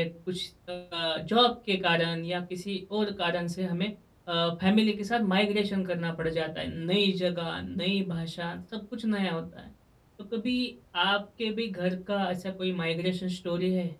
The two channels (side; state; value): both; identical; correlation 1.00